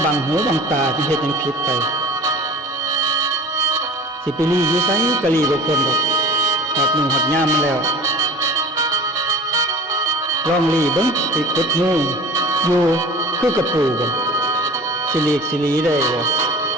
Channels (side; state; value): both; normal; correlation 0.42